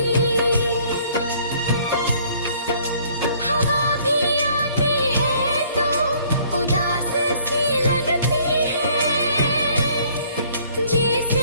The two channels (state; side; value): inverted; both; correlation -0.60